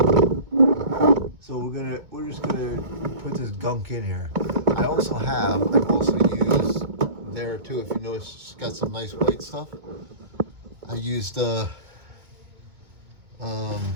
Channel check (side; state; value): left; late; 2.2 ms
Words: So we're just gonna put this gunk in here. I've also used there too, if you notice, it's got some nice white stuff. I used